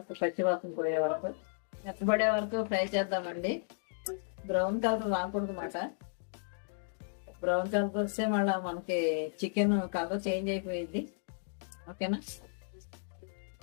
పచ్చివాసన పోయే వరకు, మెత్తబడే వరకు ఫ్రై చేద్దామండి. బ్రౌన్ కలర్ రాకూడదు అన్నమాట. బ్రౌన్ కలర్ వస్తే మళ్ళీ మనకి చికెన్ కలర్ చేంజ్ అయిపోయింది. ఓకేనా?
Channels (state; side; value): silent; right; digital silence